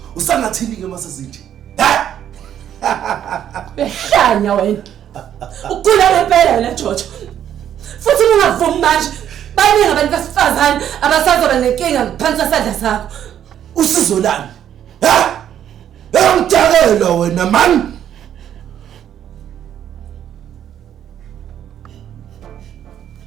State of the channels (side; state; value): left; quieter; 10.1 dB